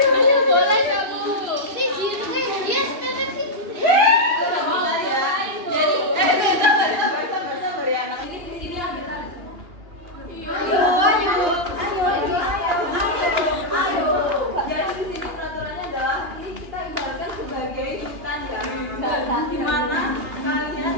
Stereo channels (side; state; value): left; late; 2.9 ms